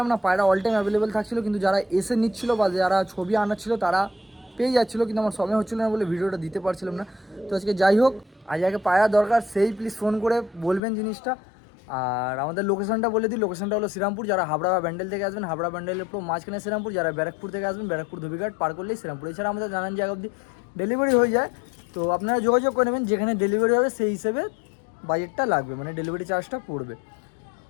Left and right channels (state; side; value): drops out; right; at 10.8 s